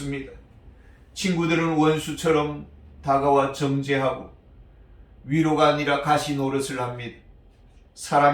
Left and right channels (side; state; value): both; identical; correlation 1.00